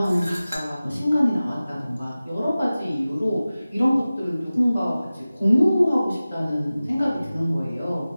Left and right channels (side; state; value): both; inverted; correlation -0.97